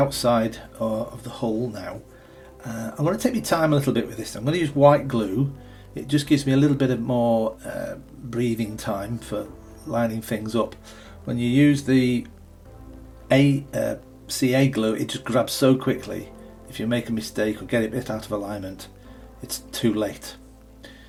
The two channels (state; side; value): identical; both; correlation 1.00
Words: of the hull now. I'm going to take my time a little bit with this. I'm going to use white glue. It just gives me a little bit of more breathing time for lining things up. When you use the CA glue, it just grabs so quickly. If you make a mistake or get it a bit out of alignment, it's too late.